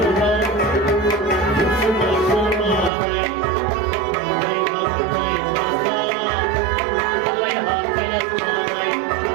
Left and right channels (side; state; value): left; drops out; at 2.9 s